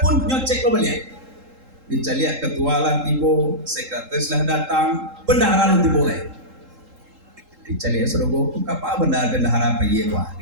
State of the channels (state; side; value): late; left; 3.8 ms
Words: pun nyocek lo balik. Dicari ketua lah tiba, sekretaris lah datang, bendahara lo tiba lagi. Dicari surga, apa bendahara apa iya wah?